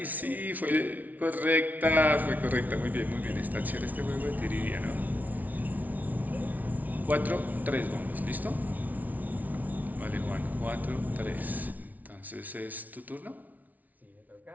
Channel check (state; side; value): late; left; 0.076 ms